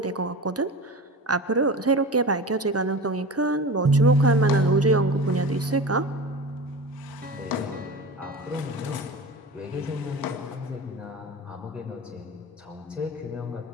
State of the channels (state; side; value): normal; both; correlation 0.31